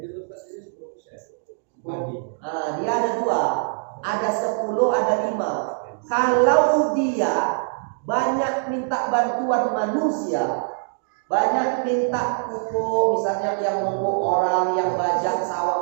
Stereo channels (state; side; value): silent; left; digital silence